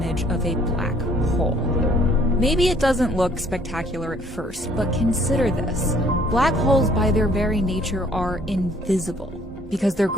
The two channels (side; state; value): both; normal; correlation 0.60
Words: of a black hole. Maybe it doesn't look spectacular at first, but consider this. Black holes by their very nature are invisible because their